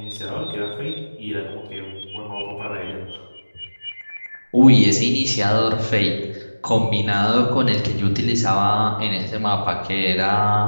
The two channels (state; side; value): inverted; both; correlation -1.00